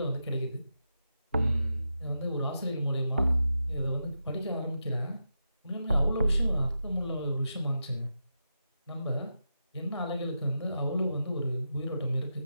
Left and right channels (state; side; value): inverted; both; correlation -0.88